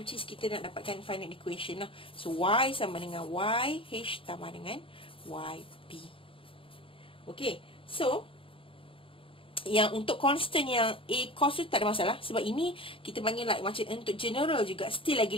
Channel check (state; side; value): late; right; 0.26 ms